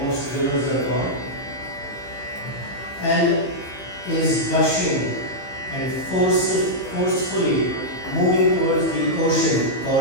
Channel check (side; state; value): right; late; 15 ms